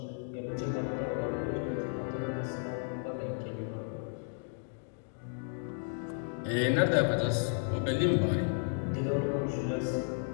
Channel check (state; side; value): silent; right; 55 dB below the other